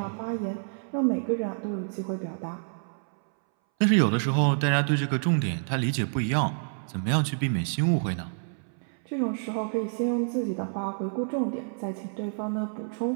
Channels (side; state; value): left; silent; 59 dB below the other